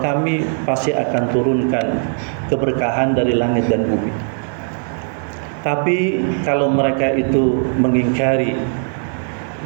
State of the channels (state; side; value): silent; left; 63 dB below the other